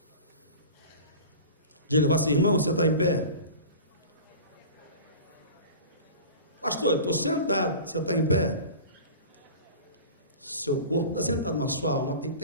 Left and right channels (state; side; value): inverted; both; correlation -0.36